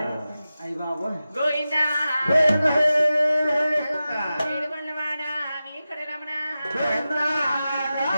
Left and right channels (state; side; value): inverted; both; correlation -0.94